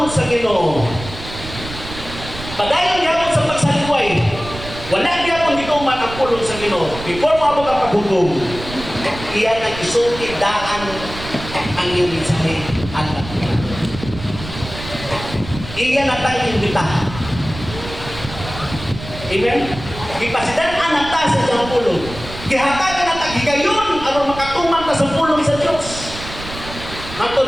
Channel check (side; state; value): right; noise; rumble, 12 dB below the sound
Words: sa Ginoo, padayon gyapon sa pagsalikway, wala gyapon gituman ang pulong sa Ginoo. Before mo abot ang paghukom, iyan ang isulti daan ang iyong mensahe at iyan ang tayong imbitahan. Amen? Ipasidan ang ta sa iyang pulong. Gihatagan ang tagigayon aron makatuman ka sa pulong sa Diyos.